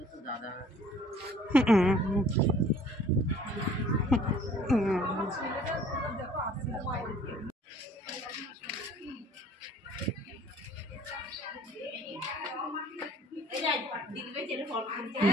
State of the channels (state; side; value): normal; both; correlation 0.53